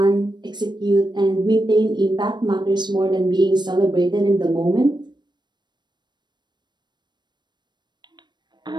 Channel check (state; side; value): late; left; 0.21 ms